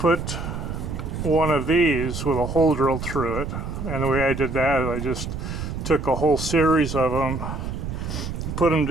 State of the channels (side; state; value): right; noise; rumble, 5 dB below the sound